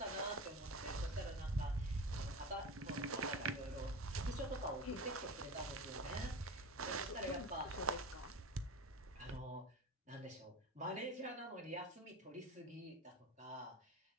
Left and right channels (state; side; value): normal; both; correlation 0.29